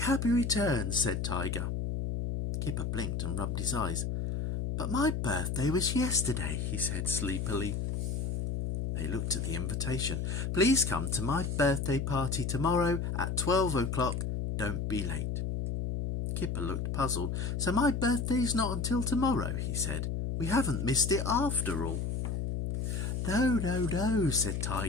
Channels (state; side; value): noise; left; hum, 1 dB below the sound